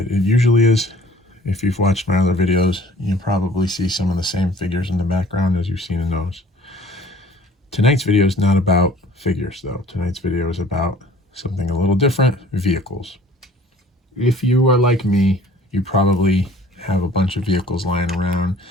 It usually is. If you've watched my other videos, you probably see some of the same figures in the background as you've seen in those. Tonight's video is not about figures, though. Tonight's video is about something a little different: vehicles. If you are like me, you probably have a bunch of vehicles lying around.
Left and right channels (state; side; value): normal; both; correlation 0.51